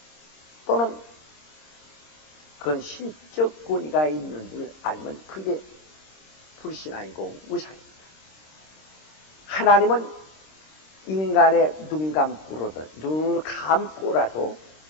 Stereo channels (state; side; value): late; right; 26 ms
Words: 또는 그런 신적 권위가 있는 줄 알면 그게 불신앙이고 우상입니다. 하나님은 인간의 눈을 감고라도